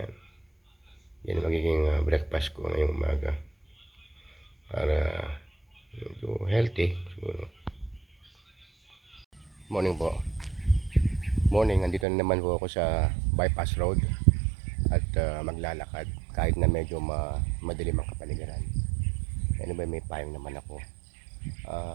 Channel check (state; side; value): drops out; left; at 12.1 s